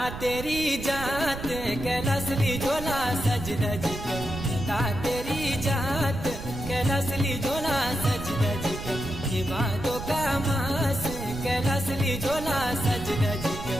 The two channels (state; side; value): noise; right; rumble, 8 dB below the sound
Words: तेरी जात कैलासली झोला सज धज कर, नंदा तेरी जात कैलासली झोला सज धज कर, ये भादो का मास कैलासली झोला सज धज कर,